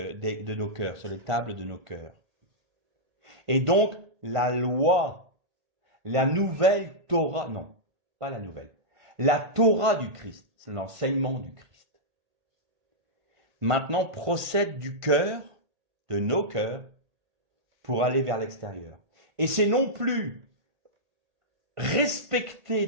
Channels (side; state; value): left; late; 1.5 ms